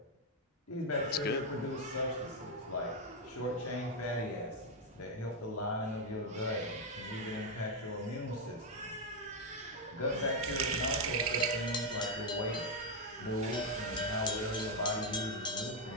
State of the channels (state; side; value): normal; both; correlation 0.02